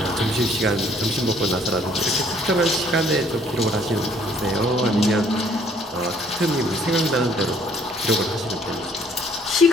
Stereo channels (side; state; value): both; normal; correlation 0.61